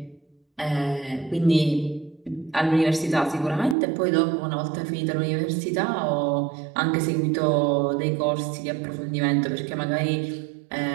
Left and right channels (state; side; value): drops out; left; at 3.8 s